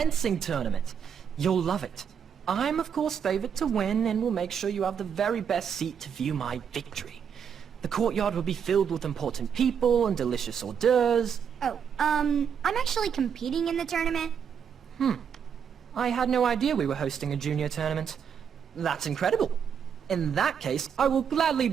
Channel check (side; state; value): left; quieter; 7.5 dB